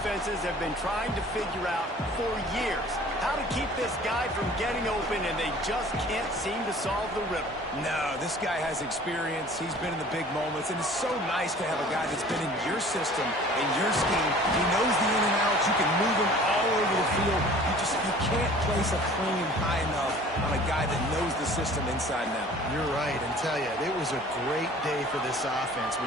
have been trying to figure out for years how to keep this guy from getting open, and they just can't seem to solve the riddle. No, this guy has experience. He's been in the big moments, and it's so nice to have a guy that's been in your system, in your scheme. He knows the in and outs. You can move him all over the field. You can't place a premium high enough on a guy that knows the system inside and out. You're right, and tell you, it was a great day for this offense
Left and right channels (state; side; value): normal; both; correlation 0.48